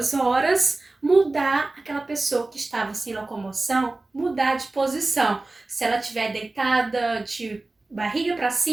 horas, mudar aquela pessoa que estava sem locomoção, mudar de posição. Se ela estiver deitada de barriga para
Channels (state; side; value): quieter; left; 3.1 dB